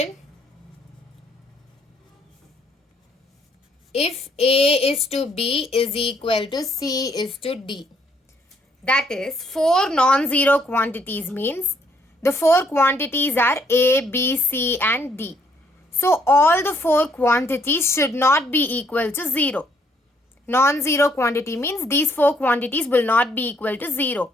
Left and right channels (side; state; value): both; normal; correlation 0.69